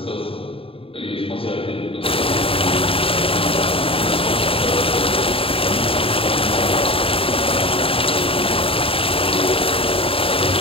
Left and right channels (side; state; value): right; late; 0.27 ms